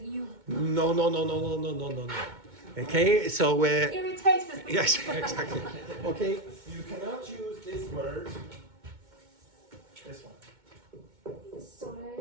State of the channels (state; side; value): late; left; 2.2 ms